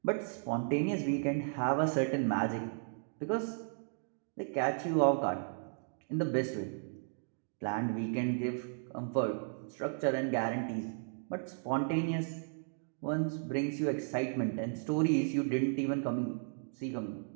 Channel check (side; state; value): left; silent; digital silence